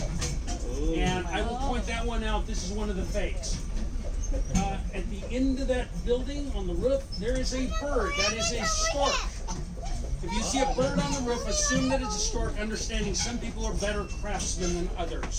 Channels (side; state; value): both; identical; correlation 1.00